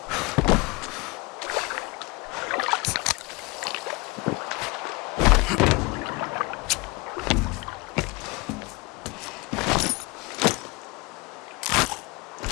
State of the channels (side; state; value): right; quieter; 25.9 dB